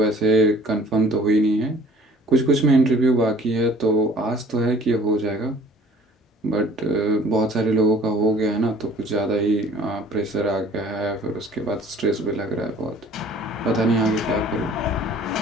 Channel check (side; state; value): both; normal; correlation 0.51